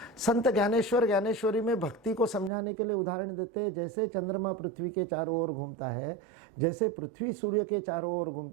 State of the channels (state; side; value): drops out; left; at 2.5 s